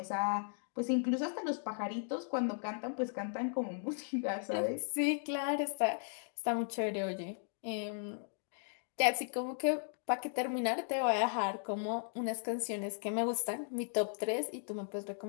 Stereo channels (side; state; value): right; silent; digital silence